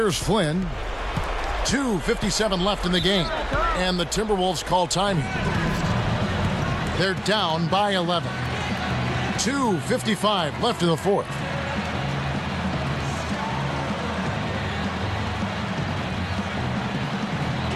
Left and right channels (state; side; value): identical; both; correlation 1.00